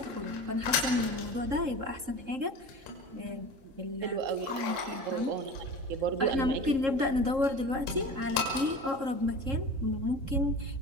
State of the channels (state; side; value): late; left; 3.7 ms